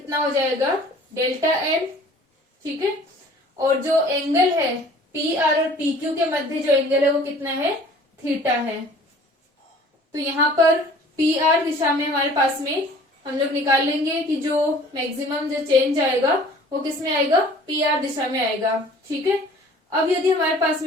हो जाएगा, डेल्टा एन। ठीक है, और जो एंगल है पी आर और पी क्यू के मध्य जो एंगल है वो कितना है, थीटा है। तो यहाँ पर पी आर दिशा में हमारे पास में हम लोग निकाल लेंगे कि जो मैक्सिमम जो चेंज आएगा वो किस में आएगा, पी आर दिशा में आएगा। ठीक है, अब यदि हमारे पास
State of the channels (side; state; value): both; normal; correlation 0.50